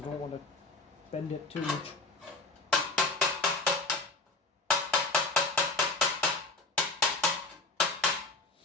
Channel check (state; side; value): quieter; right; 3.3 dB